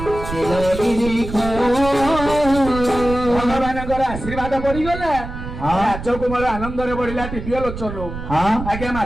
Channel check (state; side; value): noise; right; rumble, 9 dB below the sound